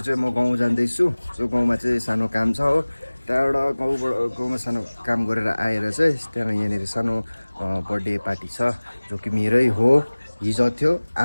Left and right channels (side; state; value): both; inverted; correlation -1.00